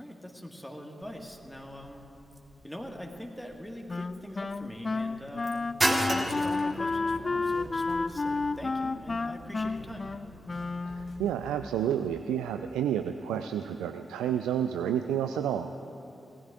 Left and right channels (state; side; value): normal; both; correlation 0.77